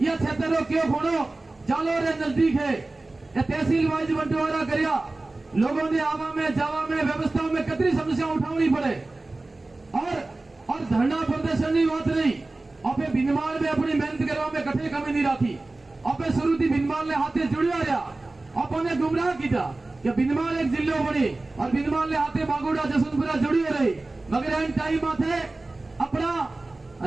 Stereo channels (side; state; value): left; quieter; 3.1 dB